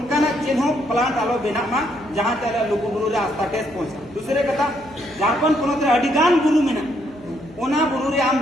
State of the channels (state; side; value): noise; left; hum, 23 dB below the sound